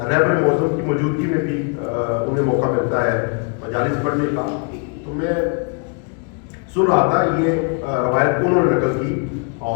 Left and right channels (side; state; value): right; quieter; 37.8 dB